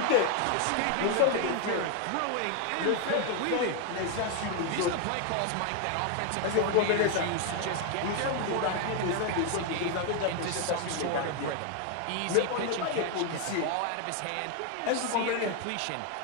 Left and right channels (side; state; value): both; different; correlation 0.01